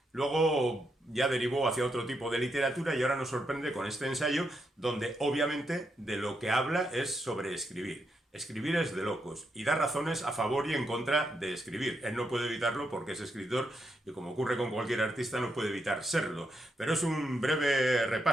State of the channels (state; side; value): normal; both; correlation 0.81